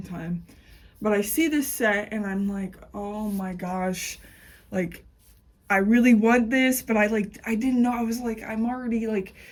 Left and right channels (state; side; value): identical; both; correlation 1.00